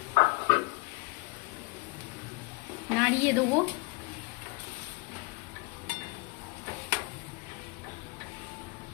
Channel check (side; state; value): right; quieter; 26.3 dB